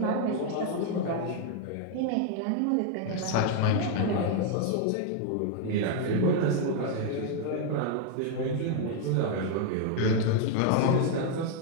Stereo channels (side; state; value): both; different; correlation 0.00